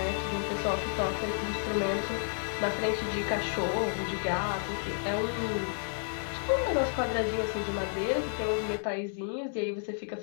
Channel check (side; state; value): right; silent; digital silence